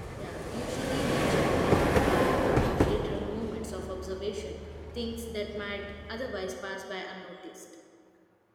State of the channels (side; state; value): both; identical; correlation 1.00